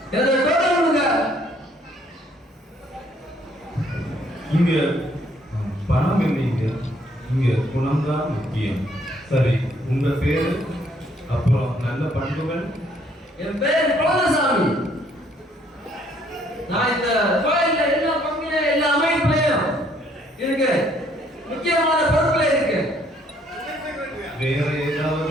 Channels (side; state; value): both; normal; correlation 0.65